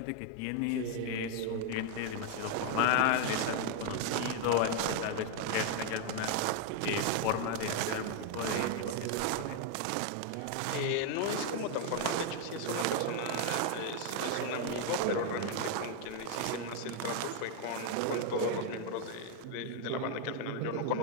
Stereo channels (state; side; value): different; both; correlation 0.00